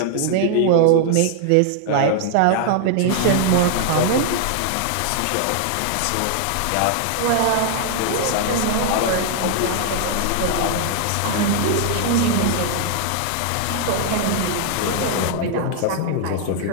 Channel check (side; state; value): both; different; correlation 0.00